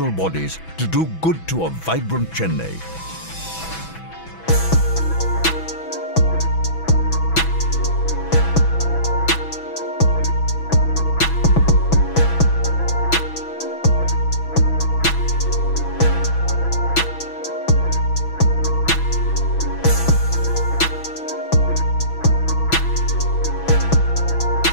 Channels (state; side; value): late; right; 6.1 ms